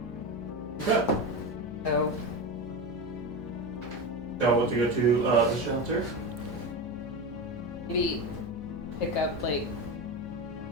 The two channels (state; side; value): noise; left; hum, 15 dB below the sound